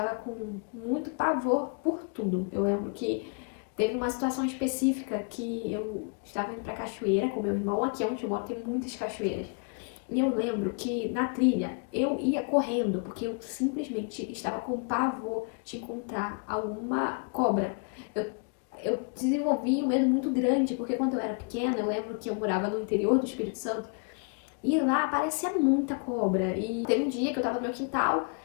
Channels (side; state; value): right; quieter; 39.4 dB